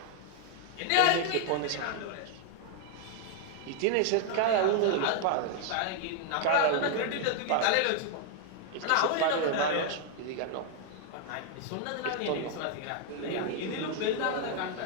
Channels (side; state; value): both; different; correlation 0.00